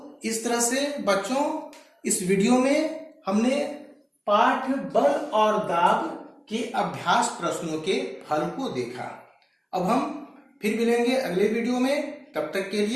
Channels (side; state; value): both; identical; correlation 1.00